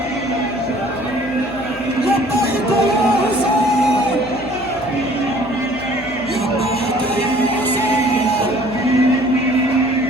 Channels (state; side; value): noise; left; hum, 18 dB below the sound